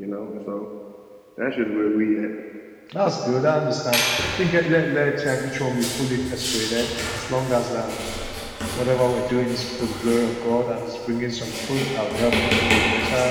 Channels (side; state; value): both; identical; correlation 1.00